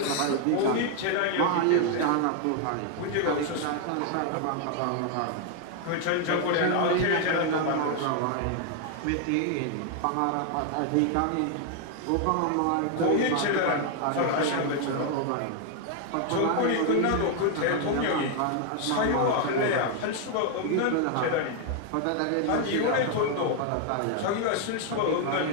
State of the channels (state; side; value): different; both; correlation 0.00